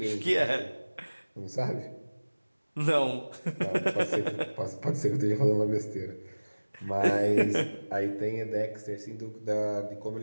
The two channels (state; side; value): inverted; both; correlation -1.00